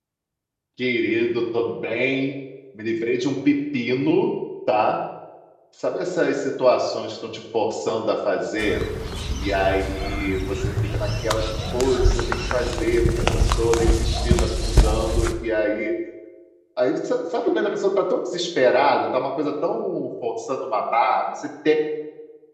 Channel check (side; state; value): both; identical; correlation 1.00